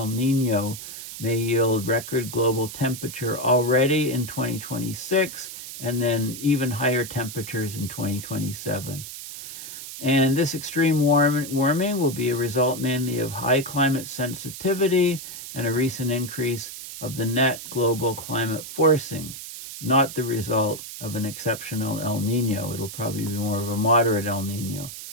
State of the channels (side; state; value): right; noise; hiss, 10 dB below the sound